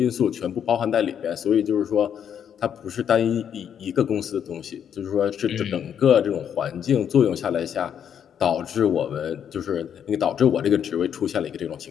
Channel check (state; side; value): quieter; right; 8.6 dB